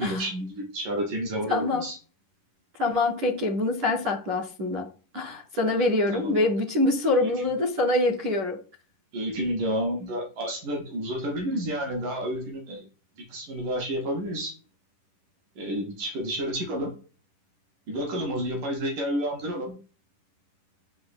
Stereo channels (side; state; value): left; late; 11 ms